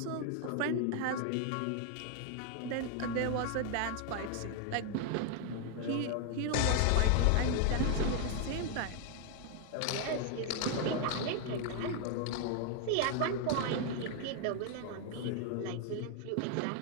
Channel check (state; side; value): different; both; correlation 0.00